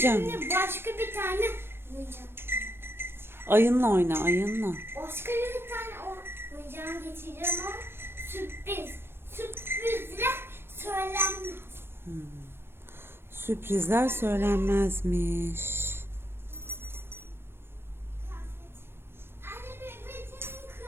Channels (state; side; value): late; left; 0.11 ms